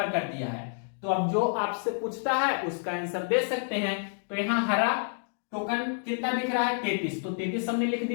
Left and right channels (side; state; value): right; silent; digital silence